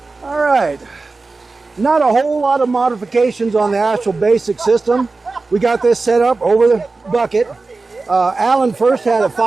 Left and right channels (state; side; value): quieter; left; 3.8 dB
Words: All right. Not a whole lot of modifications on the actual basic system. We got this set up over the bucket. Alan first had a